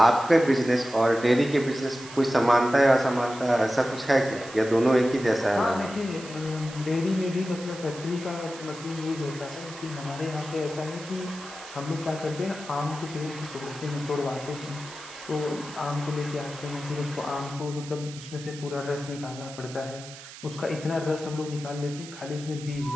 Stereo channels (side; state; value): right; noise; hiss, 15 dB below the sound